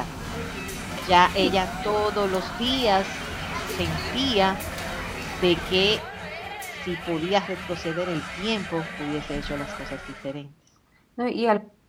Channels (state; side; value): identical; both; correlation 1.00